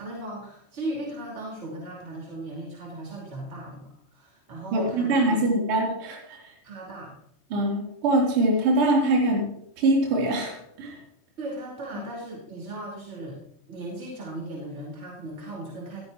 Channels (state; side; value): late; left; 3.2 ms